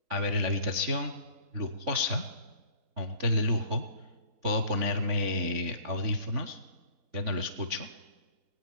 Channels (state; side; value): late; left; 3.5 ms